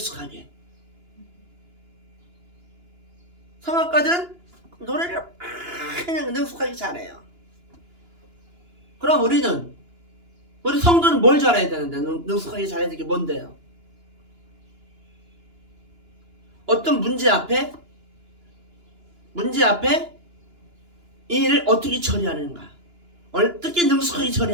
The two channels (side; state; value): left; late; 2.9 ms